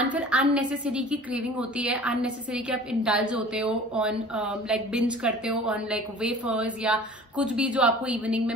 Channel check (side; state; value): both; normal; correlation 0.44